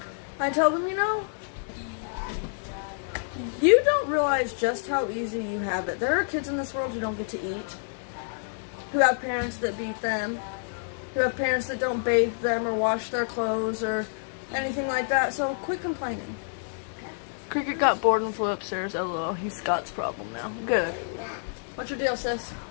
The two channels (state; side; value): silent; right; digital silence